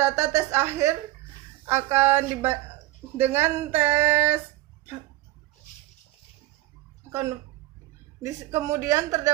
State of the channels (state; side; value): quieter; left; 16.8 dB